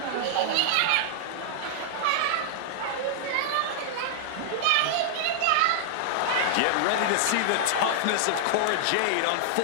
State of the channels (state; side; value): different; both; correlation -0.01